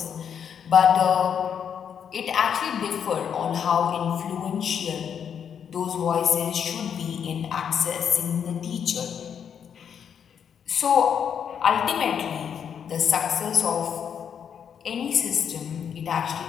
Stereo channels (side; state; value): right; quieter; 7.9 dB